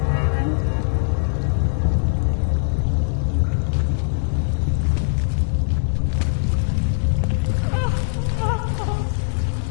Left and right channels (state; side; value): silent; right; digital silence